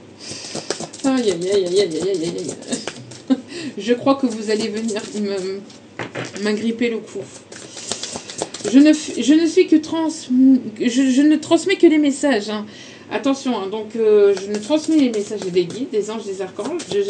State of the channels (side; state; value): both; identical; correlation 1.00